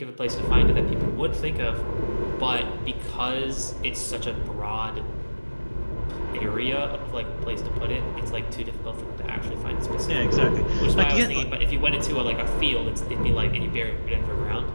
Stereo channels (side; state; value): both; inverted; correlation -1.00